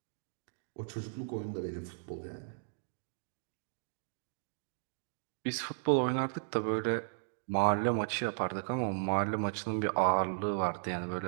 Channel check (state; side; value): silent; left; digital silence